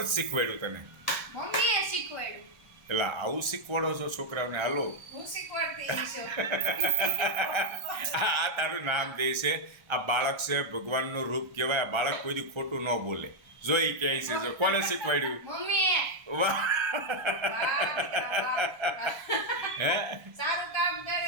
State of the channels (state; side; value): late; left; 1.3 ms